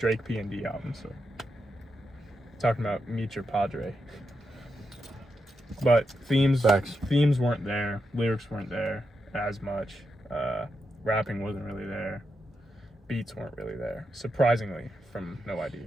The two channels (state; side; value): normal; both; correlation 0.86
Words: P&D album. So talking about Meet Your Padre. But themes weren't there. Lyrics weren't there as much. Rapping wasn't really there. Beats weren't really there, surprisingly, from No ID.